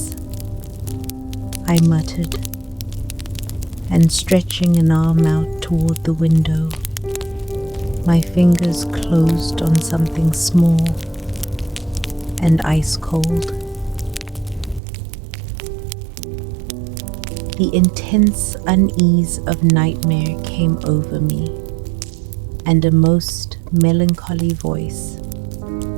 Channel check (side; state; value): left; drops out; at 14.8 s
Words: I muttered, and stretching an arm out toward the window, my fingers closed on something small and ice cold. The intense unease of nightmare came over me, and a most melancholy voice,